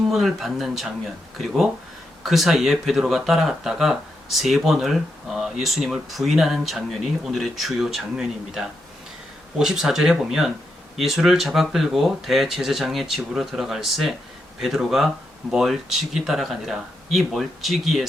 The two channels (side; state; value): both; normal; correlation 0.84